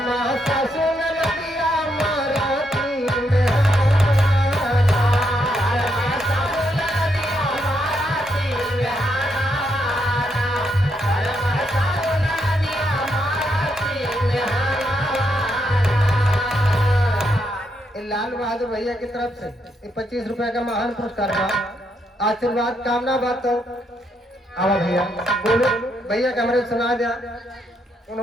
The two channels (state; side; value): normal; both; correlation 0.78